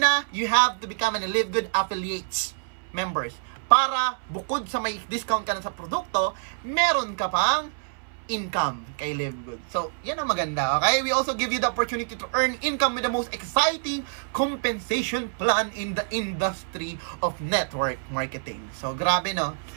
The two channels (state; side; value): silent; left; 61 dB below the other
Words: you have to become an Live Good Affiliates members para bukod sa may discount ka na sa produkto, meron ka pang income kay Live Good. So, yan ang maganda, okay? We also give you the opportunity to earn income with the most exciting compensation plan in the industry of network marketing. So, grabe, no?